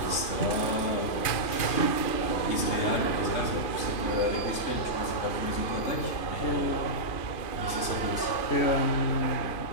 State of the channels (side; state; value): right; late; 2.5 ms